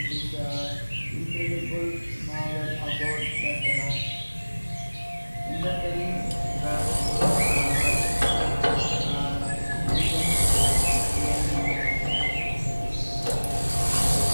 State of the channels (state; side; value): inverted; both; correlation -1.00